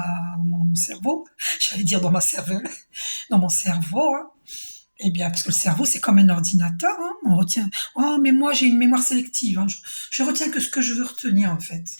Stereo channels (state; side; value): inverted; both; correlation -1.00